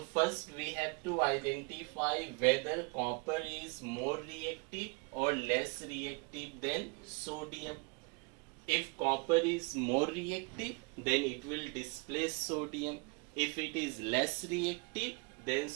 first we have to identify whether copper is more reactive or less reactive than sodium. If copper is more reactive, then it will displace sodium. If it is less reactive than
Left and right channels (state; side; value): quieter; left; 31.0 dB